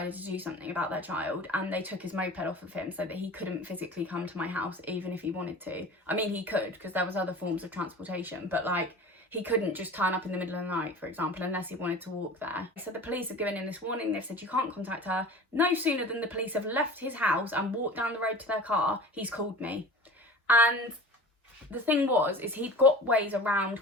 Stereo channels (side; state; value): both; normal; correlation 0.38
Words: to do something about their child, and they took his moped off of him so that he couldn't physically come to my house even if he wanted to. I mean, he could, because there was other forms of transportation, but like, he couldn't just turn up in the middle of the night, for example, unless he wanted to walk there. So the police have given him this warning. They've said, you can't contact her. No sooner than the police have left his house and walked down the road to their car, he's called me. And the thing is he'd got ways around